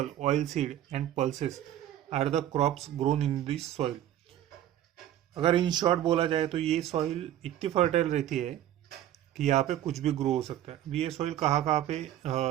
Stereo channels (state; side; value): quieter; left; 12.1 dB